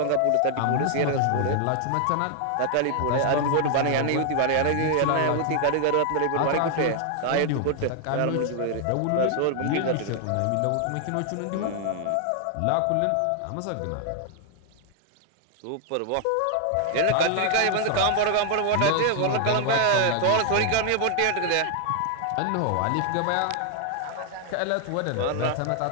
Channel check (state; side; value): different; both; correlation 0.00